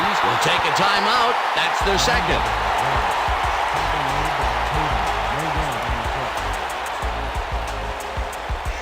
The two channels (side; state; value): both; identical; correlation 1.00